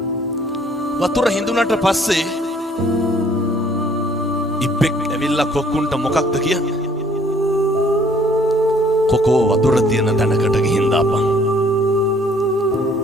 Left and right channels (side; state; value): both; normal; correlation 0.60